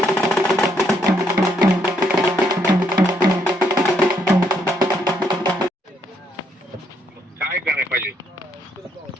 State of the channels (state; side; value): normal; both; correlation 0.73